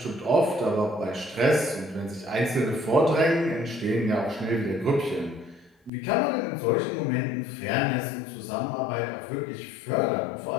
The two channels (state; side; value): drops out; right; at 5.9 s